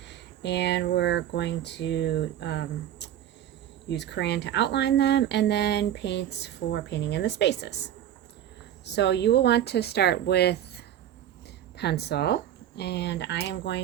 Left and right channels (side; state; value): left; quieter; 11.1 dB